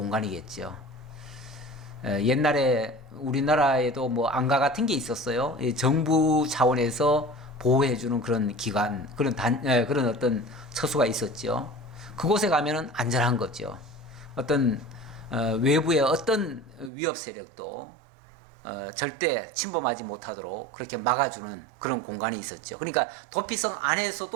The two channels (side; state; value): left; drops out; at 16.9 s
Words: 옛날에 우리나라에도 뭐 안가 같은 게 있었어요. 정부 차원에서 보호해주는 그런 기관, 그런 어떤 처소가 있었죠. 그곳에 가면은 안전한 거죠. 어떤 외부의 어떤 위협 세력도 절대 침범하지 못하도록 그렇게 막아주는 그런 공간이 있었죠. 그러니까 도피성